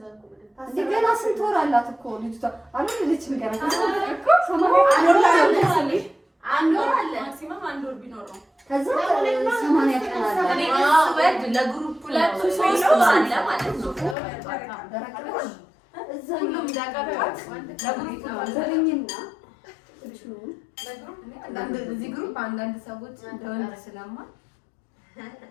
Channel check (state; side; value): drops out; right; at 14.2 s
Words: ገና ስንት ወር አላት እኮ ልጅቷ? አልወለደችም ገና። አንድ ወር አለ ማክሲመም አንድ ወር ቢኖር ነው። ከዛ 80 ቀን አለ። እኔ ስወድ ለግሩፕ 2-3 ወር አለ ማለት ነው። ሁሉም ዳቀባት ለግሩፕ ነው ዘረኝና እዚህ ግሩፕ አንዳንድ ሰዎች እንደወንድ ስለማ